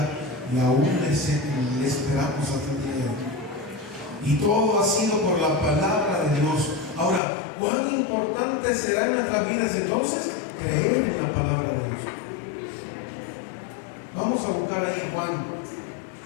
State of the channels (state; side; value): drops out; right; at 7.2 s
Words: y aún le esperamos hasta el día de hoy. Y todo ha sido por la palabra de Dios. Ahora, ¿cuán importante será en nuestras vidas entonces creer en la palabra de Dios? Vamos a buscar ahí Juan,